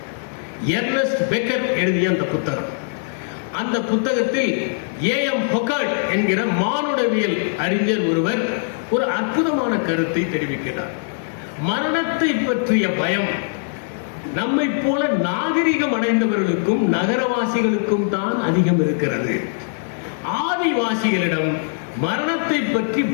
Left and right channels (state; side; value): silent; right; digital silence